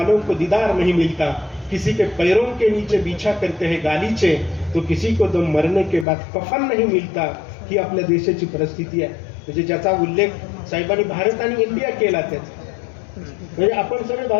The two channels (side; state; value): right; drops out; at 6.1 s